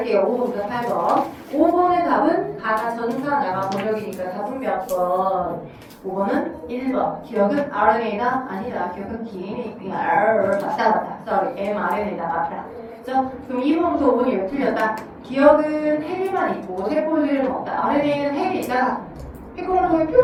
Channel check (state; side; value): identical; both; correlation 1.00